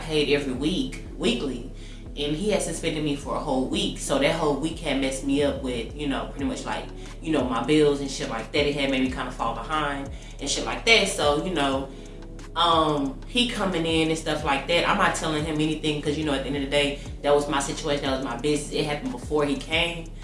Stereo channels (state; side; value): identical; both; correlation 1.00